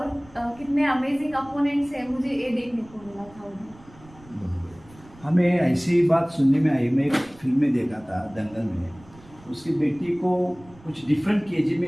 कितने अमेजिंग अपोनेंट्स हैं, मुझे ये देखने को मिला था उन्हें। हमें ऐसी बात सुनने में आई, मैं एक फिल्म में देखा था दंगल में, उसकी बेटी को कुछ डिफरेंट केजी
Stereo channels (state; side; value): noise; right; rumble, 24 dB below the sound